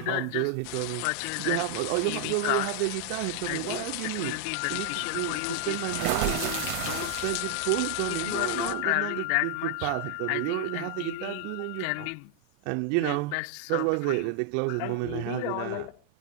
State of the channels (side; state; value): both; different; correlation 0.00